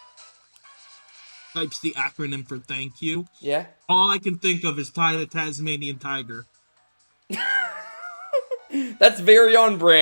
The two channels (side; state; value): both; inverted; correlation -1.00